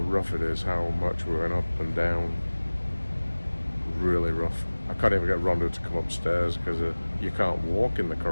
it is, how much we're going up and down. Really rough. I can't even get Rhonda to come upstairs because you can't walk in the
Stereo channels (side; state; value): both; inverted; correlation -1.00